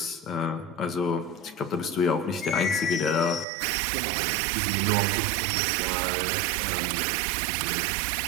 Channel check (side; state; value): left; drops out; at 3.5 s